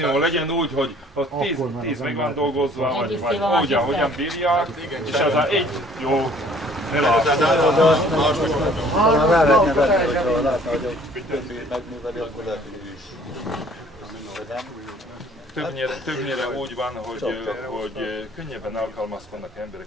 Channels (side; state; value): both; normal; correlation 0.55